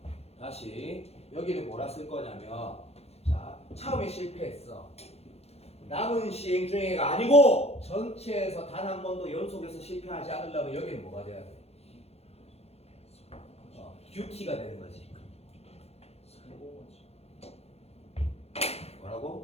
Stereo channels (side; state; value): right; late; 0.30 ms